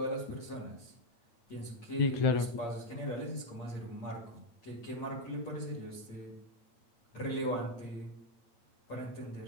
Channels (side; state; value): right; late; 8.6 ms